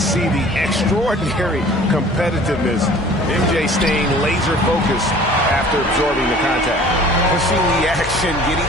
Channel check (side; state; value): both; normal; correlation 0.48